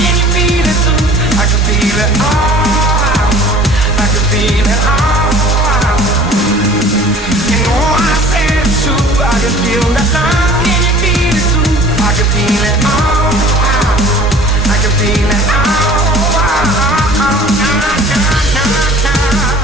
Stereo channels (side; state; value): both; normal; correlation 0.47